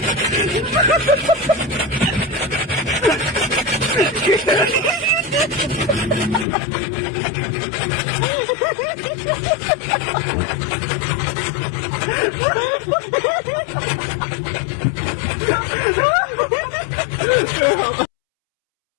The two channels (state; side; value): drops out; right; at 6.5 s